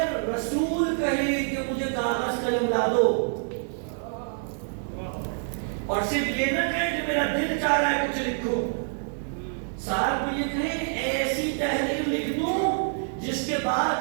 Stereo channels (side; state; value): left; silent; 60 dB below the other